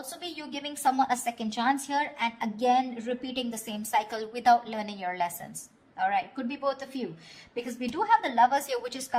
be you giving someone a second chance here and again repeating the same cycle without learning your lessons. All right, could be both of you, because we do have the Lovers here, which is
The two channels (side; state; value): both; identical; correlation 1.00